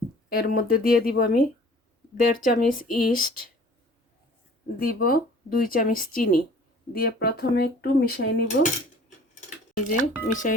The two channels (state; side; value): normal; both; correlation 0.50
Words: এর মধ্যে দিয়ে দিব আমি 1.5 চামচ ইস্ট, দিব 2 চামচ চিনি, দিয়ে প্রথমে একটু মিশিয়ে নিব। এই যে মিশিয়ে